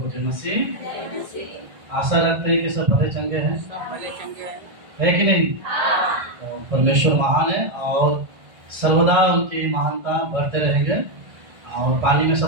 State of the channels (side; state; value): left; late; 1.6 ms